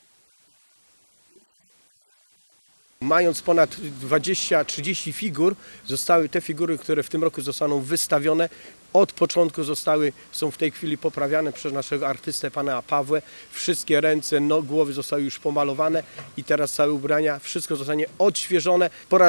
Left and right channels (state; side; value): inverted; both; correlation -1.00